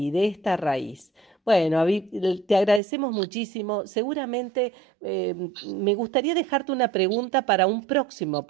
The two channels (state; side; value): drops out; left; at 2.8 s